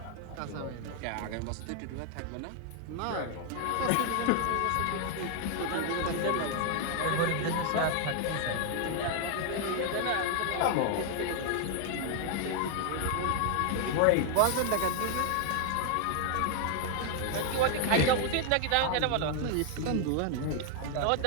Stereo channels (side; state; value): both; different; correlation 0.00